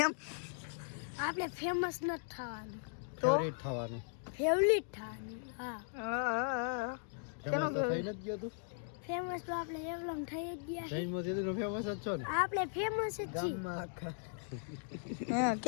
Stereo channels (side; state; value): right; silent; digital silence